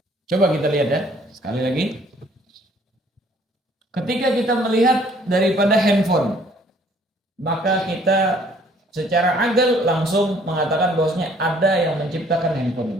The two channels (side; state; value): both; normal; correlation 0.60